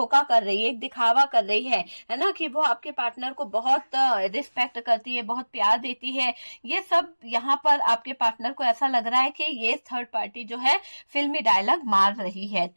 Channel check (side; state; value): both; inverted; correlation -1.00